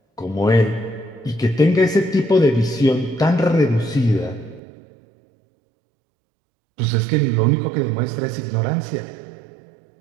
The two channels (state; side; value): drops out; left; at 4.6 s